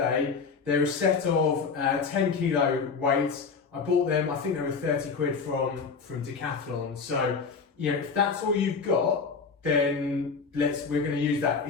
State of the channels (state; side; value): quieter; right; 5.2 dB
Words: they're a set of 10 kilo weights. I bought them, I think they were 30 quid from Decathlon. So, you know, if that's all you've got, then we're going to use that.